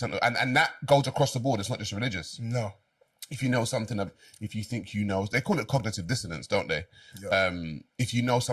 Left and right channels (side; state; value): both; identical; correlation 1.00